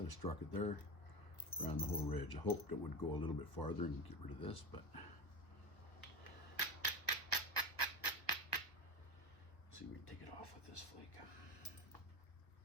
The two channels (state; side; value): late; right; 1.0 ms